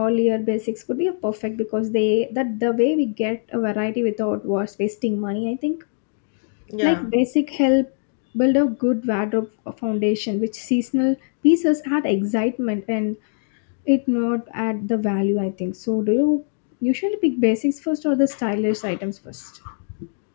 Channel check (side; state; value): right; silent; digital silence